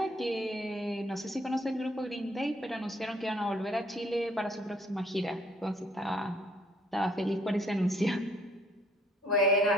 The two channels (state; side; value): normal; both; correlation 0.63